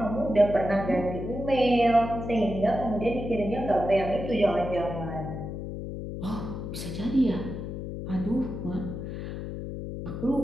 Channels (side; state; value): left; noise; hum, 7 dB below the sound